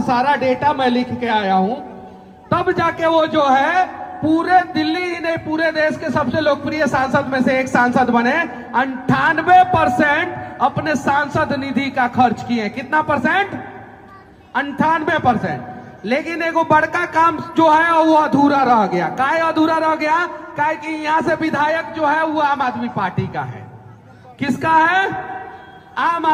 सारा डेटा मैं लिख के आया हूं, तब जाके वो जो है पूरे दिल्ली ही नहीं पूरे देश के सबसे लोकप्रिय सांसद में से एक सांसद बने। 98% अपने सांसद निधि का खर्च किए। कितना परसेंट? 98%। लेकिन एगो बड़का काम जो है वो अधूरा रह गया। काहे अधूरा रह गया? काहे कि यहां से विधायक जो है वो आम आदमी पार्टी का है। किसका है? आम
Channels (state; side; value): identical; both; correlation 1.00